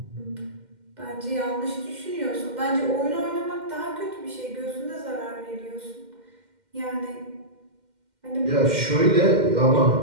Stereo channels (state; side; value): late; left; 2.1 ms